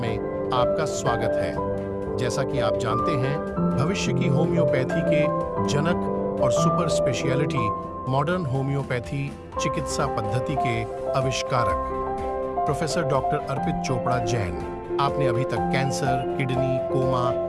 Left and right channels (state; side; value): identical; both; correlation 1.00